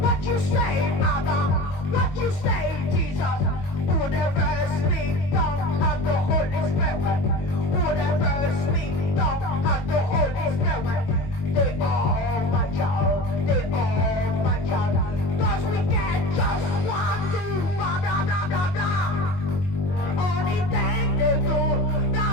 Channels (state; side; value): late; right; 21 ms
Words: What you say, Adam? What you say, Jesus? Whatever speak, don't have the Holy Spirit. Whatever speak, don't have the Holy Spirit. They are my child. They are my child. Cause we get just want to blah blah blah blah blah. Only thing they do blah